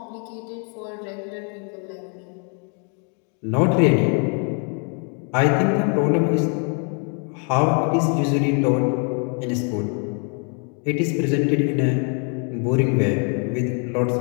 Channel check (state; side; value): quieter; right; 39.7 dB